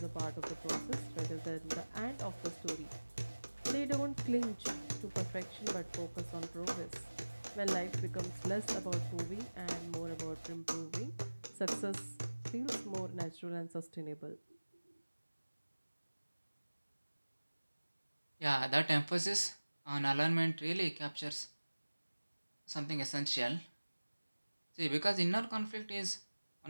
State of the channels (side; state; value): both; inverted; correlation -1.00